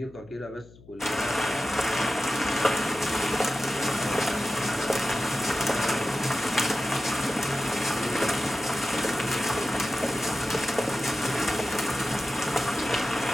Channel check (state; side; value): noise; left; hum, 23 dB below the sound